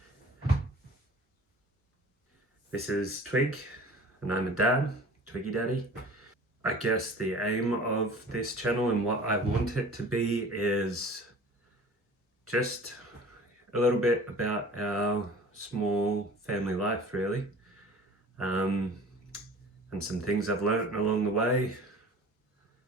This is Twig, and I'm a dad, Twiggy Daddy. I guess the aim of this channel and what I want it to be is just a little bit about our small family life, really, and some things I've learned along the way.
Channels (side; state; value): both; normal; correlation 0.44